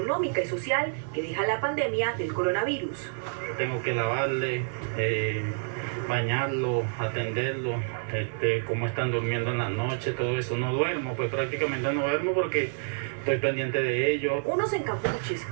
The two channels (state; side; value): silent; left; 59 dB below the other